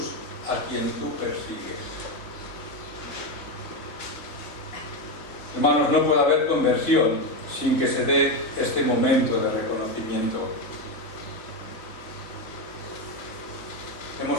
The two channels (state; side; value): late; right; 2.9 ms